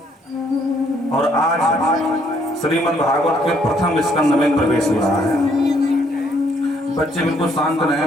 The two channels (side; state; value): both; normal; correlation 0.67